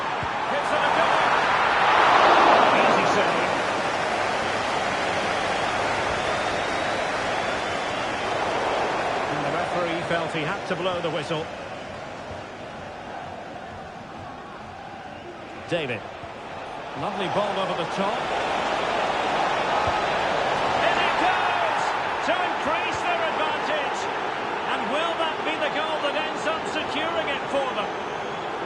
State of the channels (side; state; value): both; identical; correlation 1.00